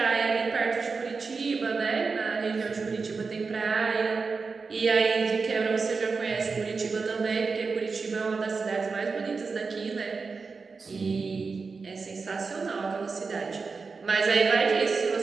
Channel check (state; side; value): quieter; left; 4.6 dB